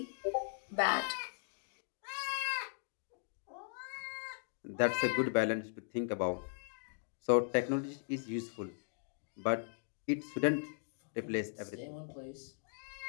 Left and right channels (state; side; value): silent; right; digital silence